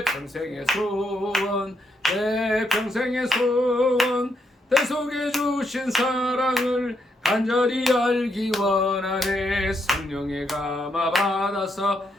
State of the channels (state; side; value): normal; both; correlation 0.78